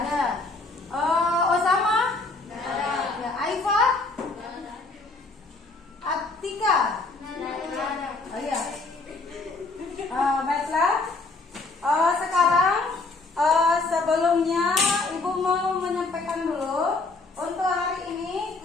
Osama, ya, Aifa, Atika, oh iya. Baiklah. Sekarang sebelumnya ibu mau menyampaikan dulu untuk hari ini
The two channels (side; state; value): right; quieter; 3.6 dB